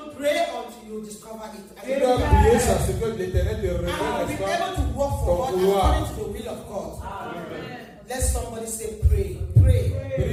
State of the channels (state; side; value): identical; both; correlation 1.00